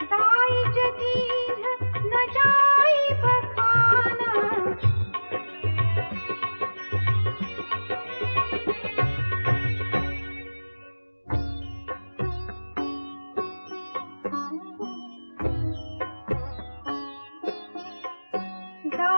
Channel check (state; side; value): inverted; both; correlation -1.00